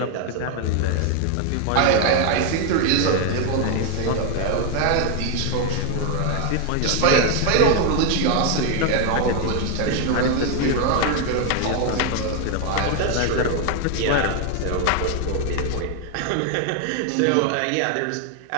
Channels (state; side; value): different; both; correlation 0.01